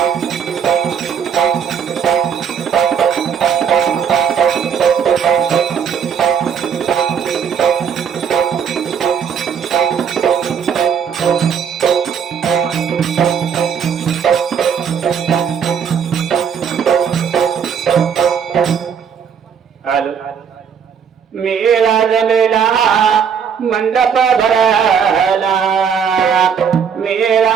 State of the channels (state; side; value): quieter; left; 7.4 dB